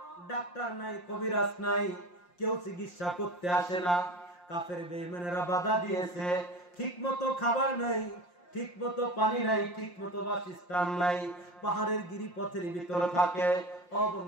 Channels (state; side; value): late; right; 5.7 ms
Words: ডাক্তার নাই, কবিরাজ নাই, কেউ চিকিৎসা করতে আসে না। কাফের বেঈমানেরা বাধা দিয়েছে, ঠিক মতো খাবার নাই, ঠিক মতো পানি নাই, ঠিক মতো বাসস্থান নাই, পাহাড়ের গিরিপথের ভিতরে থাকে।